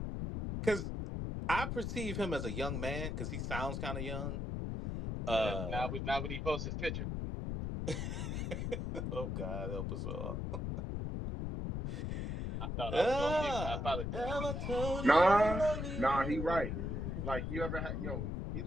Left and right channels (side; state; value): left; noise; rumble, 2 dB below the sound